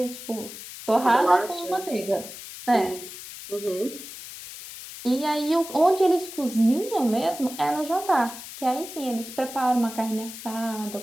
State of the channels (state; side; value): noise; left; hiss, 12 dB below the sound